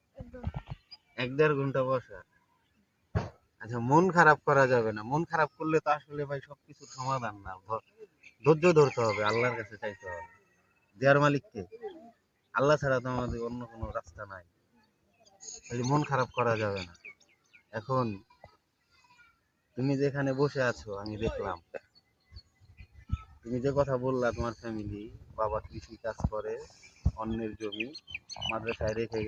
1-1.5 ঘন্টা বসা। আচ্ছা মন খারাপ করা যাবে না, মন খারাপ করলে তো আসলে ভাই সবকিছুর সমাধান না। ধৈর্য ধরতে হবে, আল্লাহর কাছে চাইতে হবে। দেয়ার মালিক কে? আল্লাহ ছাড়া তো আমাদের অন্য কোনো রাস্তা নাই। তাহলে মন খারাপ করা যাবে না। এখন তুমি যেখানে বসে আছো আমি দেখলাম, তুমি যে কথা বললা তোমার ফ্যামিলি, বাবা কৃষি কাজ করে, অন্যের জমি মাদ্রাসায় রেখে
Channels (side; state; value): both; identical; correlation 1.00